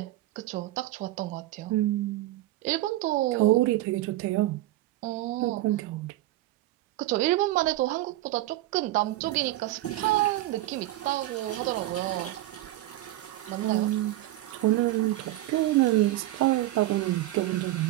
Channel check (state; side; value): quieter; left; 16.2 dB